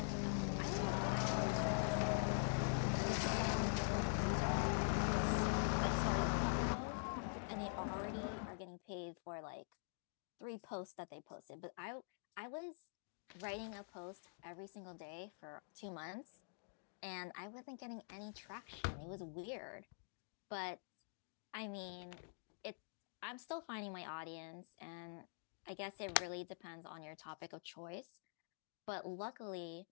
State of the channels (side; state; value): right; silent; digital silence